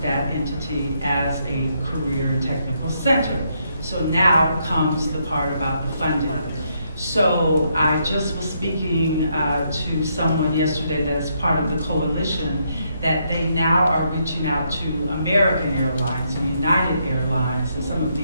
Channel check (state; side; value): inverted; both; correlation -0.76